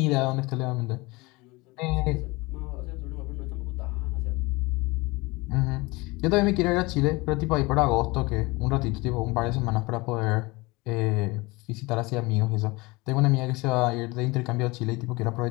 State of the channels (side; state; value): right; quieter; 23.7 dB